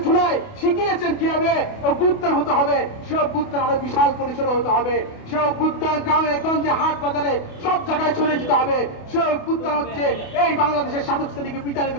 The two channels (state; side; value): late; right; 28 ms